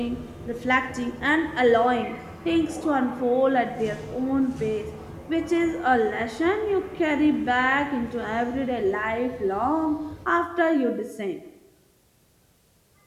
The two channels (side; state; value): both; identical; correlation 1.00